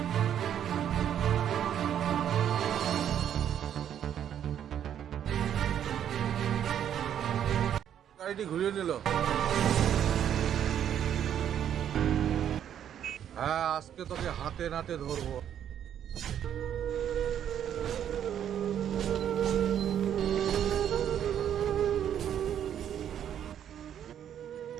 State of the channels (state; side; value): quieter; left; 9.7 dB